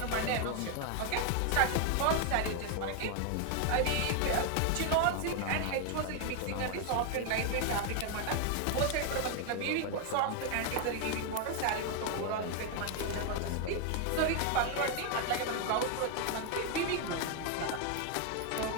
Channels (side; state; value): both; different; correlation 0.00